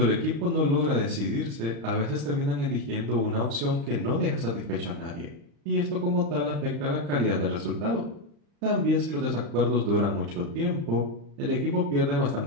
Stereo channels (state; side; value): late; left; 35 ms